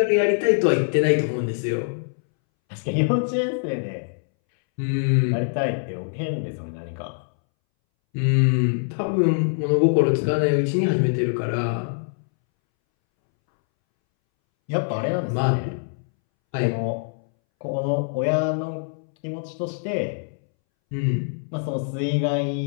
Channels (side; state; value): right; silent; 62 dB below the other